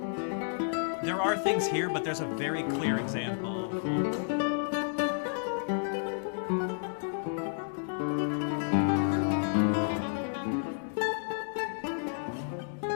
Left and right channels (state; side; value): silent; right; digital silence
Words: There are things here, but there's a very clear example.